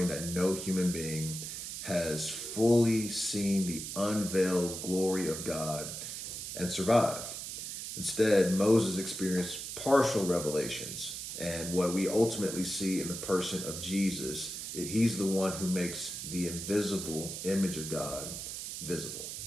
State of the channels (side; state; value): right; noise; hiss, 7 dB below the sound